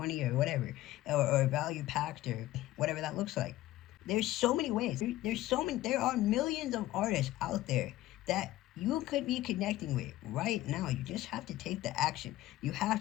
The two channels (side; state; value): right; quieter; 15.9 dB